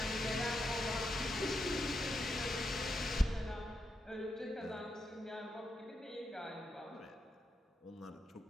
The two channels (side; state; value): both; normal; correlation 0.84